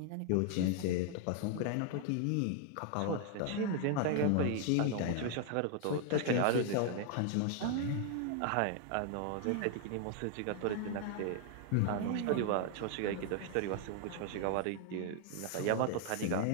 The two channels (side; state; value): both; different; correlation 0.00